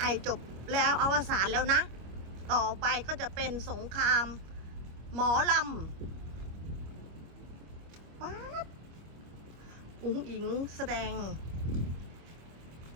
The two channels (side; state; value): left; late; 25 ms